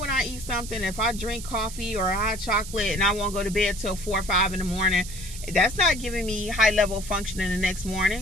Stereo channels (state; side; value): noise; right; hiss, 12 dB below the sound